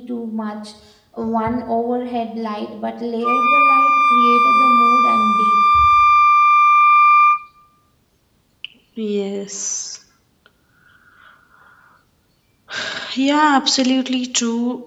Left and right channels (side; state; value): both; identical; correlation 1.00